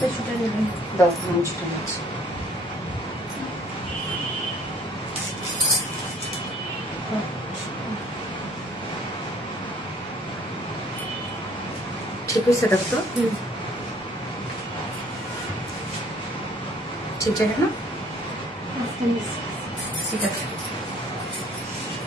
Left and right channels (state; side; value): normal; both; correlation 0.57